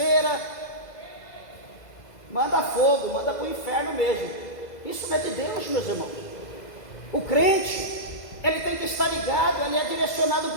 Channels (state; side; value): late; right; 2.0 ms